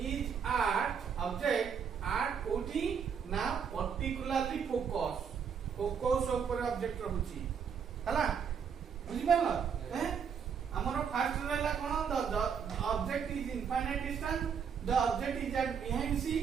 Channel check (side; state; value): left; quieter; 7.0 dB